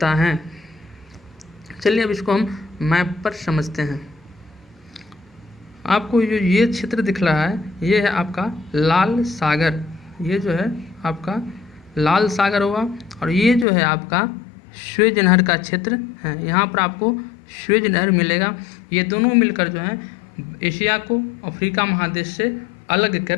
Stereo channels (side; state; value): right; drops out; at 13.7 s